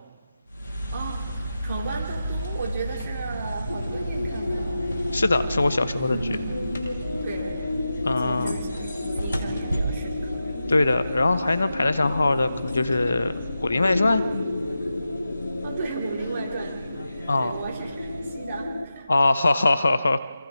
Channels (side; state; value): both; inverted; correlation -0.91